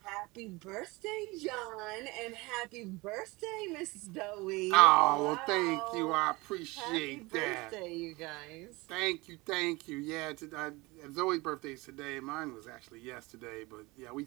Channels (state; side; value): quieter; left; 23.4 dB